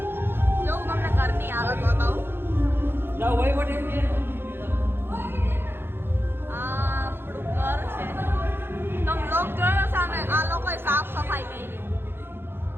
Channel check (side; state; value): left; late; 0.10 ms